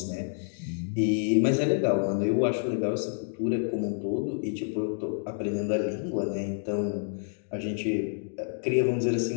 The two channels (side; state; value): right; silent; digital silence